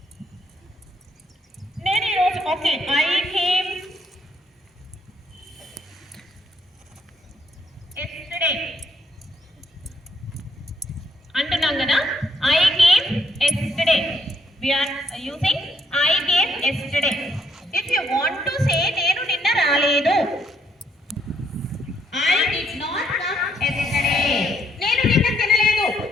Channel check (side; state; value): both; normal; correlation 0.72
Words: Okay, I came yesterday. Antunam kada, I came yesterday. We are using I came yesterday. If you want to say nenu ninna raaledu, I did not come yesterday. Nenu ninna tinaledu.